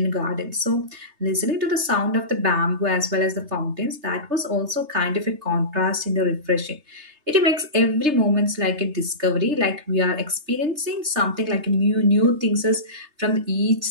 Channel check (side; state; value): left; late; 3.3 ms